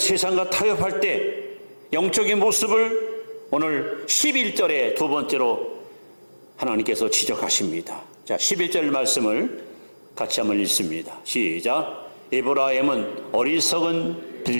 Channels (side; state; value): both; inverted; correlation -1.00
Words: 타협할 때 영적인 모습을 오늘 11절에 두 번째로 하나님께서 지적하십니다. 자, 11절 말씀을 같이 한번 읽습니다. 시작. 에브라임은 어리석은